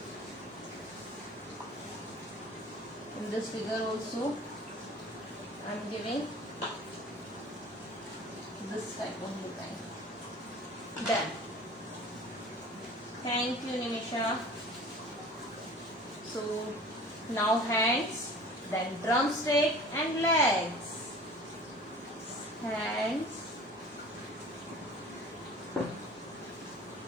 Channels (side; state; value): both; normal; correlation 0.43